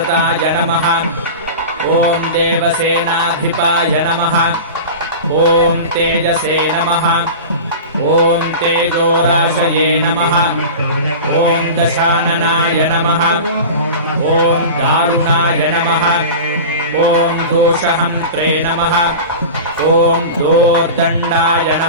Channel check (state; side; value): inverted; both; correlation -0.32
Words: नमः ॐ देवसेनाधिपाय नमः ॐ तेजसे नमः ॐ तेजोराशये नमः ॐ दशाननाय नमः ॐ दारुणाय नमः ॐ दोषहन्त्रे नमः ॐ दोर्दण्डाय